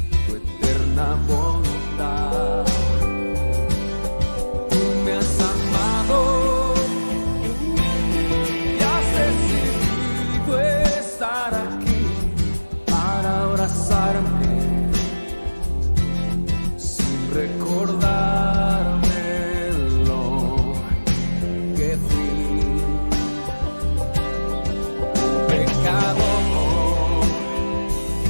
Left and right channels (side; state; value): both; inverted; correlation -1.00